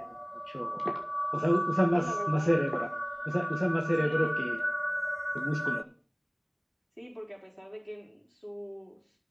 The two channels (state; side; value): identical; both; correlation 1.00